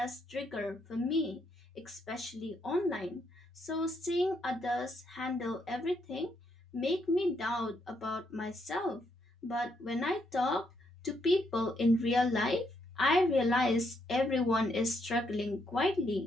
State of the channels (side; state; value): both; normal; correlation 0.76